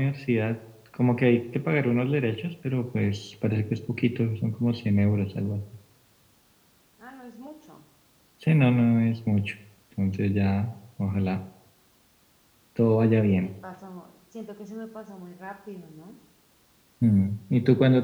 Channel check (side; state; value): both; identical; correlation 1.00